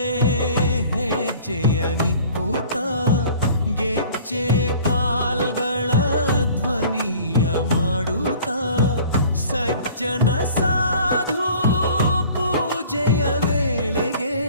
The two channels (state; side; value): inverted; both; correlation -0.48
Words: ಹೆಜ್ಜೆಯ ನಿಕ್ಕುತ್ತ ಗೆಜ್ಜೆ ಕಾಲ್ಗಳ ಧ್ವನಿಯ ಮಾಡುತ್ತ ಸಜ್ಜನ ಸಾಧು ಪೂಜೆಯ ವೇಳೆಗೆ